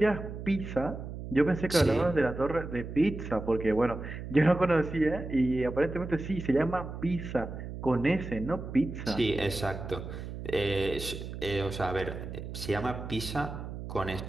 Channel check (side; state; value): right; noise; hum, 9 dB below the sound